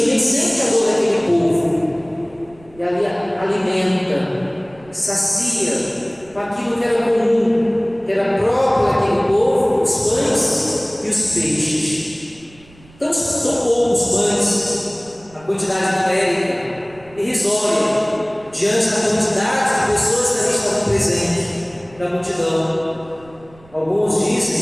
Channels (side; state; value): right; noise; rumble, 26 dB below the sound